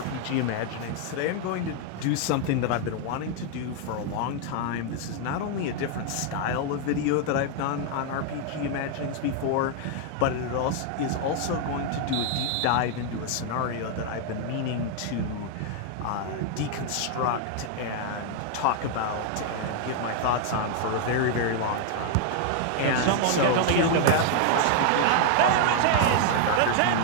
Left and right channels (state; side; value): different; both; correlation 0.00